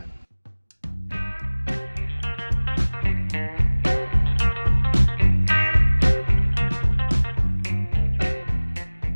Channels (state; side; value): inverted; both; correlation -1.00